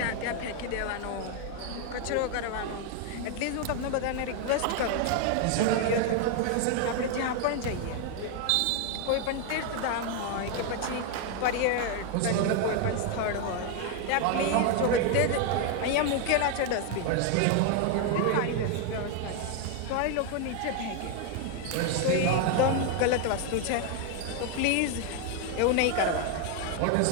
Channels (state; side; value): different; both; correlation 0.01